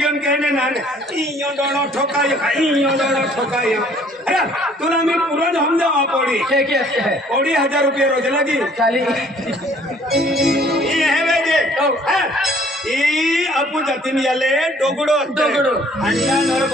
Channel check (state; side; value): normal; both; correlation 0.58